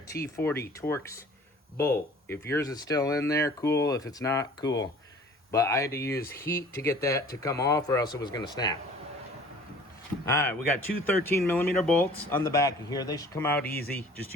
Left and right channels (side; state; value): both; normal; correlation 0.49